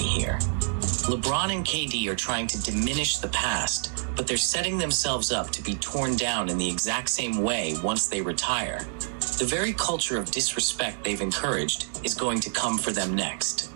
here. LeBron and KD are trying to diminish the past, but they're setting themselves up to be torn down in the exact same way once they retire. The very culture of disrespect they've encouraged is going to come for them next.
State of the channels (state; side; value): silent; left; 58 dB below the other